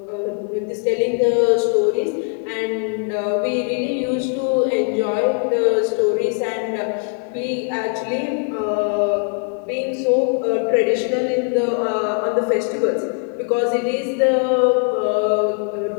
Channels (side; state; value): right; quieter; 39.7 dB